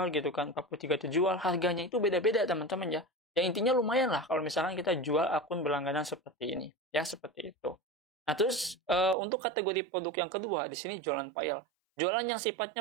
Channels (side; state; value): left; drops out; at 9.2 s